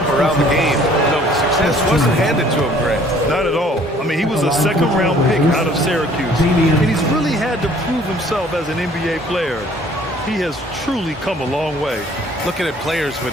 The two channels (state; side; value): normal; both; correlation 0.56